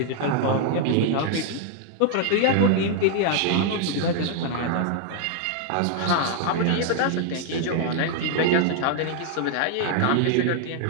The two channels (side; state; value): both; different; correlation 0.00